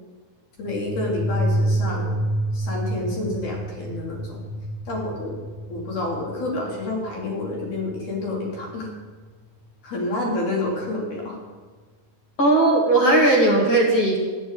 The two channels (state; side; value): late; right; 9.5 ms